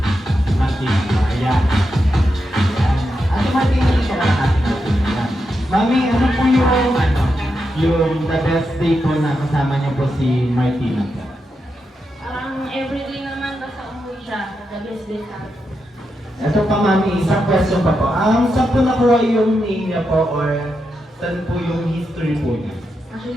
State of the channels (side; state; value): both; normal; correlation 0.86